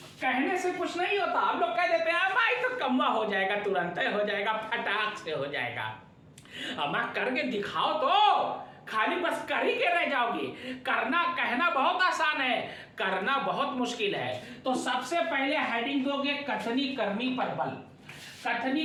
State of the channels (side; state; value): both; identical; correlation 1.00